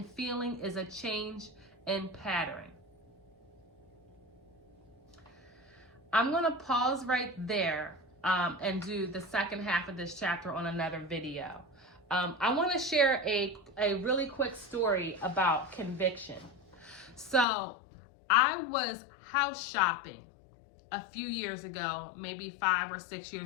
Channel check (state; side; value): drops out; right; at 17.4 s